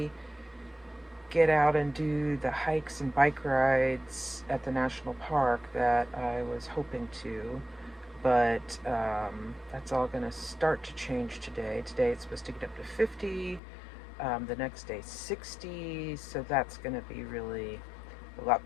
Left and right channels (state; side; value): drops out; right; at 13.6 s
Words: get out and do the hikes and bike rides at the national park that I was hoping to. But that's all going to start to change today. Today it's supposed to get up to 50. The next day 60, so that's going to be really a lot